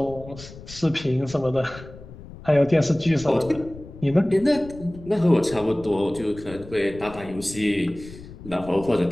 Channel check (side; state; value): left; noise; rumble, 16 dB below the sound